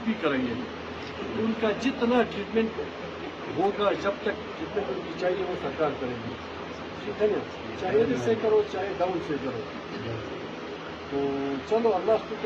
بھی کریں گے. ان کا جتنا ٹریٹمنٹ ہوگا جب تک جتنے ان کی چاہیے وہ سرکار کرے گی, ٹھیک ہے نا. چاہے ادھر سے کرو چاہے ڈاؤن سے کرو. تو چلو اللہ کو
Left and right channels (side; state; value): both; identical; correlation 1.00